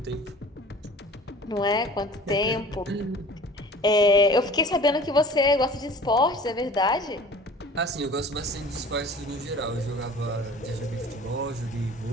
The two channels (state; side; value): normal; both; correlation 0.45